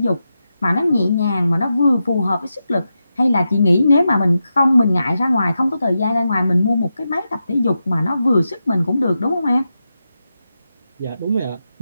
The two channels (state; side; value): inverted; both; correlation -0.89